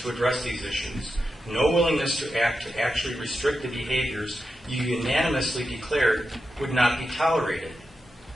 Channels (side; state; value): both; normal; correlation 0.89